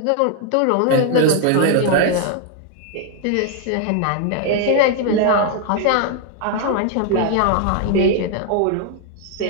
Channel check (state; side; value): different; both; correlation 0.00